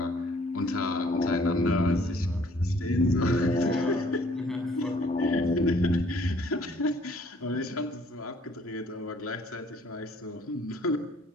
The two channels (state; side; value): normal; both; correlation 0.60